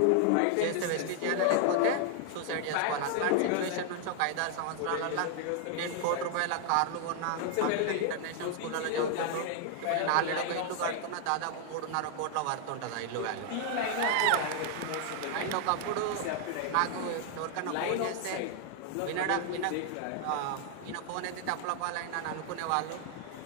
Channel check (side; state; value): both; different; correlation 0.00